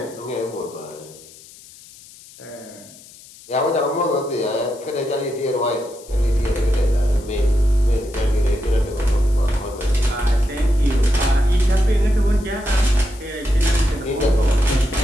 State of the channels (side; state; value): left; noise; hiss, 21 dB below the sound